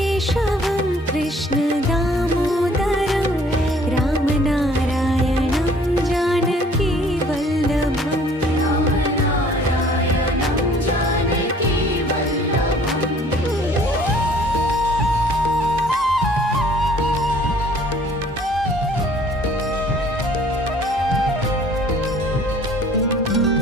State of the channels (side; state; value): both; normal; correlation 0.55